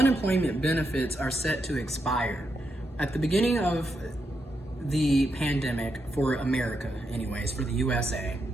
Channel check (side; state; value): both; normal; correlation 0.83